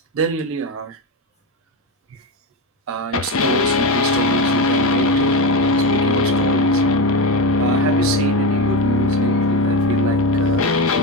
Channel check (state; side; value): normal; both; correlation 0.17